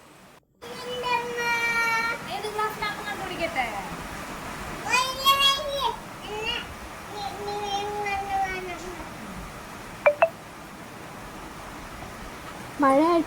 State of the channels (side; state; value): both; identical; correlation 1.00